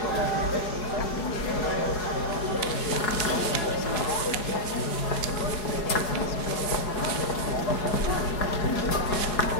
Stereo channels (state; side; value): late; right; 4.8 ms